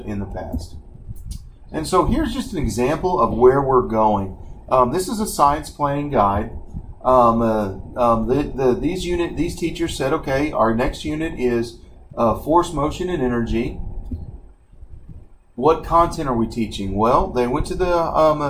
in the past. And so here's just an example of where we're going. This is a science planning guide. These teachers said, okay, our next unit is force, motion, and energy. What content are we teaching? Well, they went to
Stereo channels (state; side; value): identical; both; correlation 1.00